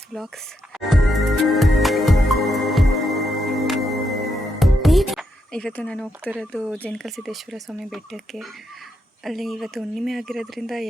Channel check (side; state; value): both; normal; correlation 0.81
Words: vlogs. ಇವತ್ತು ನಾನು ಹೋಗ್ತಿರೋದು ಜೇನಕಲ್ ಸಿದ್ದೇಶ್ವರ ಸ್ವಾಮಿ ಬೆಟ್ಟಕ್ಕೆ. ಅಲ್ಲಿ ಇವತ್ತು ಹುಣ್ಣಿಮೆ ಆಗಿರೋದ್ರಿಂದ